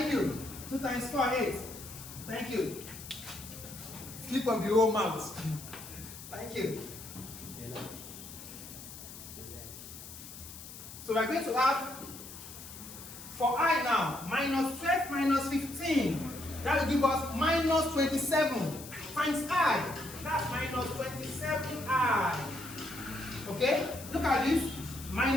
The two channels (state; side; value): noise; left; hiss, 13 dB below the sound